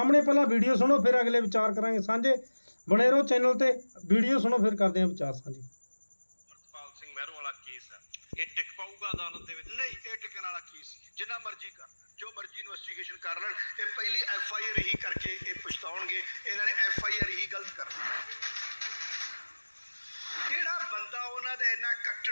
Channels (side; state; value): both; inverted; correlation -1.00